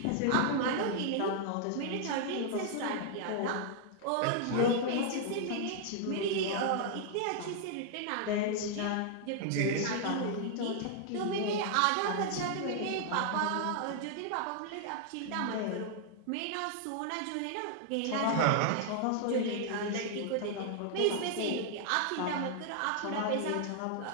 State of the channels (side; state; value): both; different; correlation -0.01